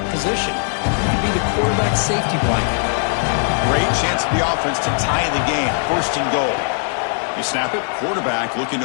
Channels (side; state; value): right; silent; 62 dB below the other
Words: position. He can be the quarterback safety blanket. Great chance for the offense to tie the game. 1st and goal. You snap it. Quarterback looking